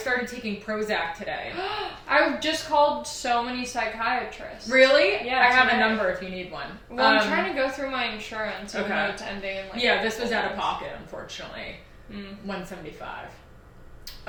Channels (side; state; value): both; identical; correlation 1.00